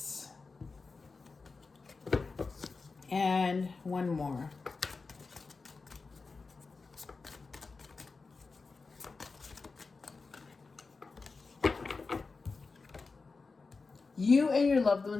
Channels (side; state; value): right; quieter; 4.2 dB